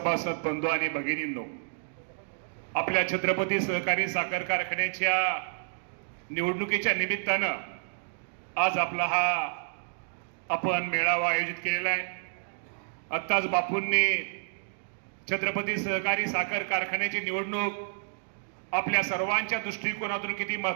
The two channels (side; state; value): left; silent; digital silence